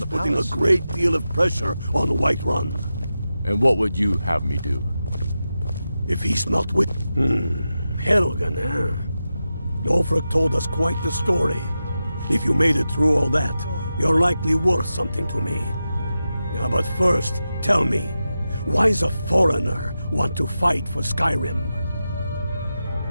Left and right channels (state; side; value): inverted; both; correlation -0.91